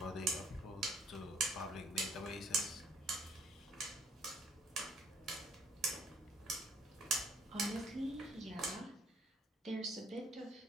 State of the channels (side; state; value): both; normal; correlation 0.63